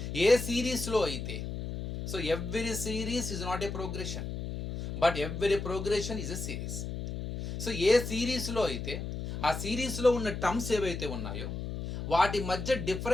A series lo aite, every series is not a progression, but every progression is a series. A series lo aite ఆ సిరీస్లో ఉన్న terms ఏవైతే ఉన్నాయో వాటి మధ్య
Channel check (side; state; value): left; noise; hum, 5 dB below the sound